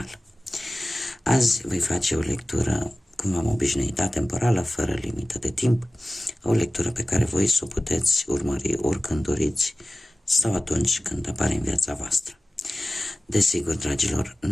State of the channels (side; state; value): both; normal; correlation 0.97